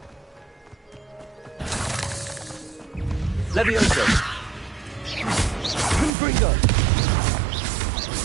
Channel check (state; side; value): drops out; left; at 6.1 s